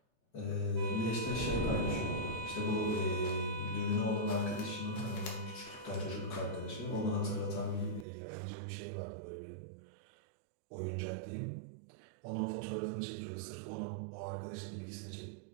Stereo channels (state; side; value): drops out; left; at 8.1 s